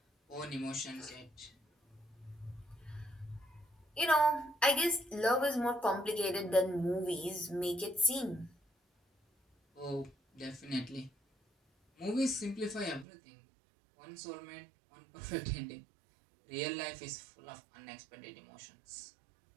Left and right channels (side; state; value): left; drops out; at 13.1 s